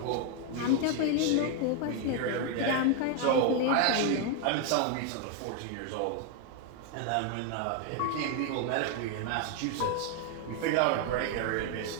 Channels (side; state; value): both; different; correlation 0.00